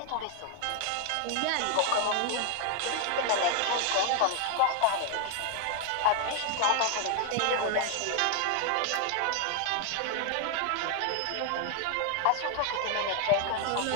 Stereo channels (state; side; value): different; both; correlation 0.00